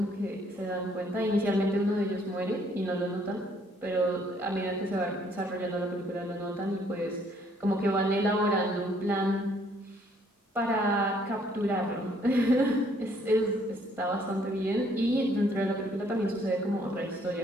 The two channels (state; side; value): normal; both; correlation 0.65